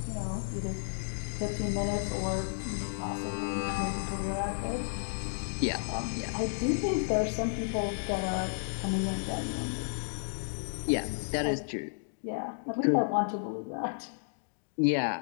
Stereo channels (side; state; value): right; silent; digital silence